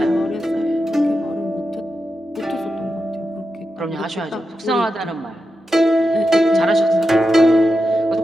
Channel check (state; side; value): normal; both; correlation 0.89